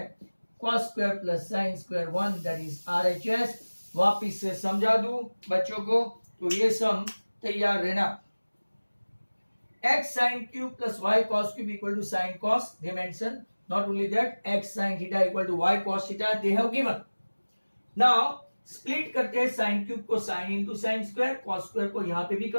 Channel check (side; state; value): both; inverted; correlation -1.00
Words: cos square plus sin square 1, that is RHS। वापिस से समझा दूं बच्चों को, तो ये सम तैयार रहना, x sin cube plus y cos cube equal to sin cos, they mention, not only that x sin theta equal to y cos theta they have given। now split करते हैं साइन क्यूब को sine into sine square, cos square को यहां पे भी